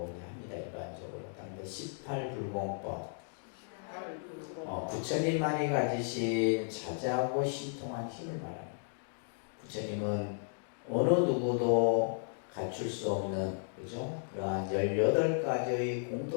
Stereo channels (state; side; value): silent; right; digital silence